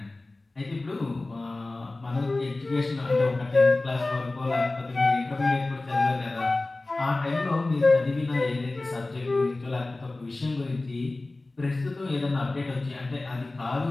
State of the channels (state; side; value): quieter; right; 3.1 dB